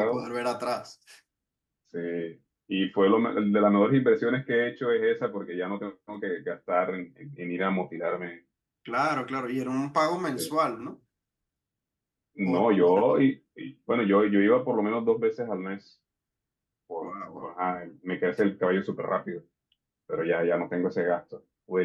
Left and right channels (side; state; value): both; identical; correlation 1.00